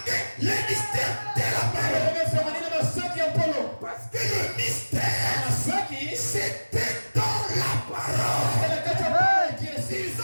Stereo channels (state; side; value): inverted; both; correlation -1.00